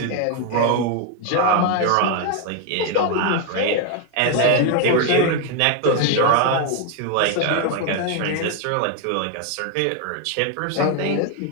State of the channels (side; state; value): both; different; correlation 0.01